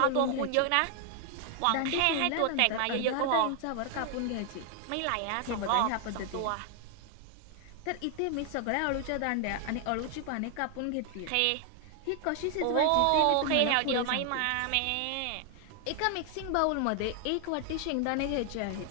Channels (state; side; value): different; both; correlation 0.00